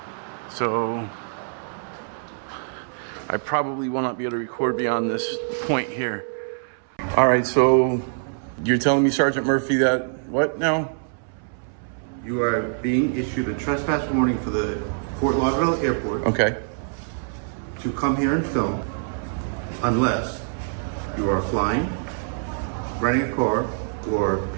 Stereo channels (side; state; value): left; silent; 62 dB below the other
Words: So I probably will not be able to record beyond this point here. All right, so you're telling me, Sergeant Murphy, that what now? You are being issued a trespass warning for the Fort Lauderdale Airport. Okay. To come here and film unless you are flying, renting a car, or